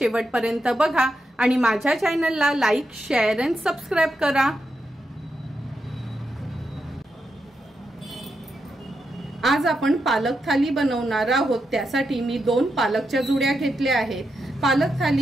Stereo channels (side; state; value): both; normal; correlation 0.85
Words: बघा आणि माझ्या चॅनलला लाईक, शेअर आणि सबस्क्राइब करा। आज आपण पालक थाली बनवणार आहोत। त्यासाठी मी 2 पालकच्या जुड्या घेतल्या आहेत। पालक